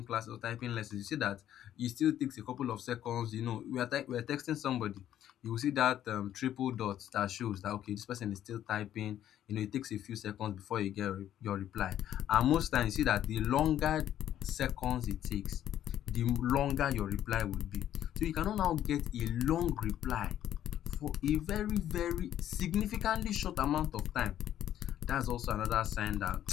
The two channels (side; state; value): right; quieter; 11.3 dB